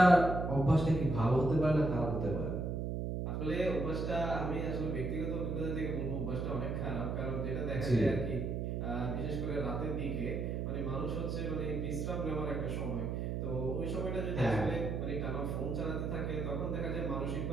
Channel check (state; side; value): noise; right; hum, 1 dB below the sound